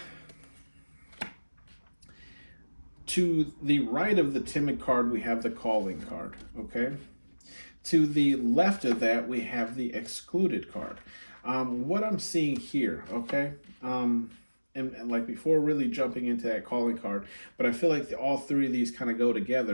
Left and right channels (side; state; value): both; inverted; correlation -1.00